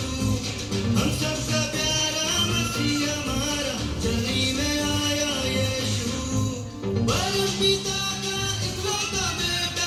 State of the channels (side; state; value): both; identical; correlation 1.00